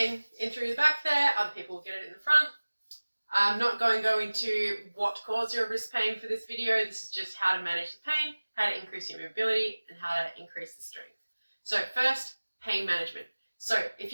in through the back there, other people get it in the front. I'm not going to go into what caused your wrist pain for this video. This is just how to manage the pain, how to increase your mobility, and how to increase the strength. So first, pain management. So if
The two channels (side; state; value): both; inverted; correlation -1.00